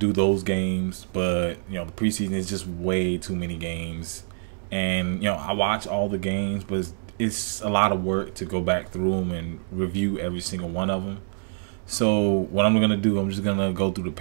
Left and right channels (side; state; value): left; silent; digital silence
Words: those games, but, the preseason is just way too many games. And, I watch all the games, but it's a lot of work to go back through them and review every single one of them. So what I'm going to do, I'm just going to go through the